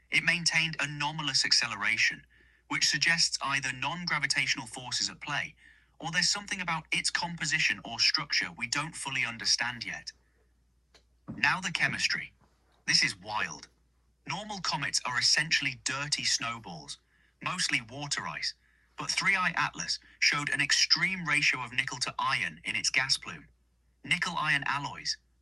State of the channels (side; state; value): both; identical; correlation 1.00